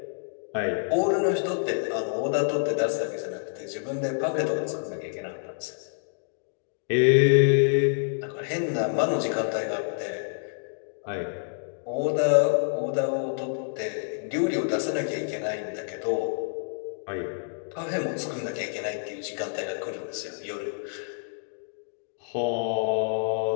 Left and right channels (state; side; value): silent; right; digital silence